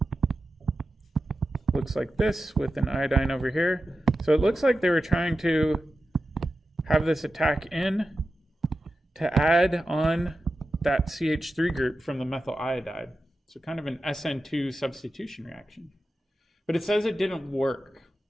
looks like this with an iodine over here. So it looks like they were trying to have this attack in to add on that CH3 group from the methyl iodide. So kind of an SN2 substitution reaction. But it says it didn't work.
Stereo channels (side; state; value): both; normal; correlation 0.92